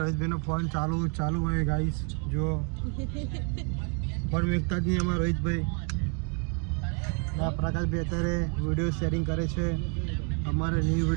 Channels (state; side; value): quieter; left; 38.2 dB